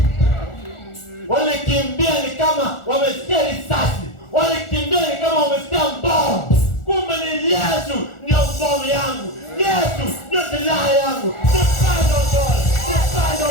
Walikimbia ni kama wamesikia risasi. Walikimbia ni kama wamesikia bomu. Kumbe ni Yesu ndio bomu yangu. Yesu ndio silaha yangu. Depend on God.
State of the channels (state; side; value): late; right; 1.4 ms